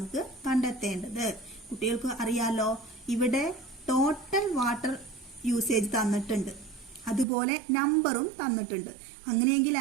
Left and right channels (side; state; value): left; drops out; at 7.2 s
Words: കണ്ടെത്തേണ്ടത്. കുട്ടികൾക്ക് അറിയാലോ, ഇവിടെ ടോട്ടൽ വാട്ടർ യൂസേജ് തന്നിട്ടുണ്ട്, അതുപോലെ നമ്പറും തന്നിട്ടുണ്ട്. അങ്ങനെയെങ്കിൽ